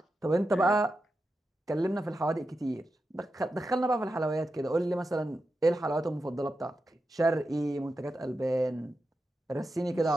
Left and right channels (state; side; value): normal; both; correlation 0.90